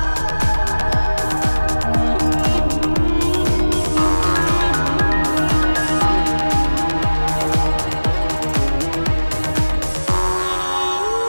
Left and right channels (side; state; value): both; inverted; correlation -1.00